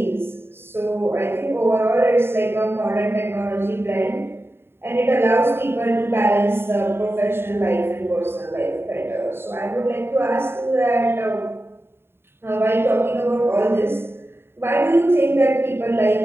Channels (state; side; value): late; left; 0.11 ms